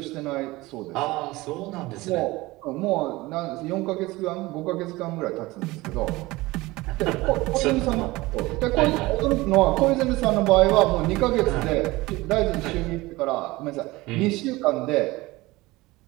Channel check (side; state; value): left; quieter; 20.5 dB